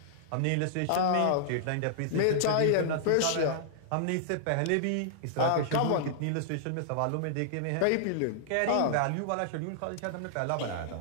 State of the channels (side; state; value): both; different; correlation -0.01